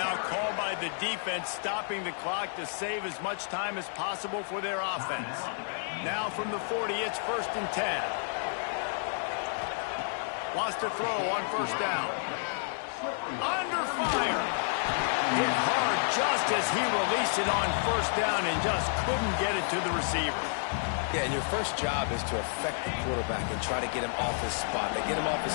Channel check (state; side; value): silent; right; 57 dB below the other